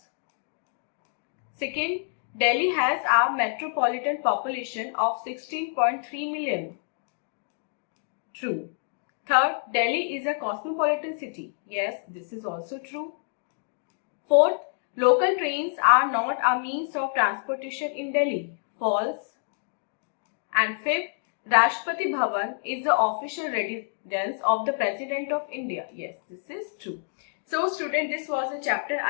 Second, Delhi has a metropolitan population of 16.3 million. True. Third, Delhi is a cosmopolitan city. Yes, this is also true. Fourth, local trains are not a means of transportation in Delhi. False. And fifth, Rashtrapati Bhavan is the official residence of the President of India. Yes, this is true. So student, this was a chapter.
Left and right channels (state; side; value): silent; right; digital silence